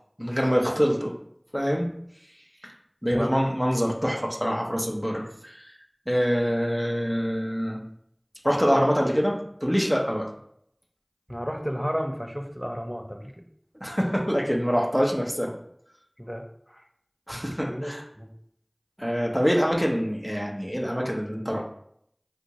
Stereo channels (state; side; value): identical; both; correlation 1.00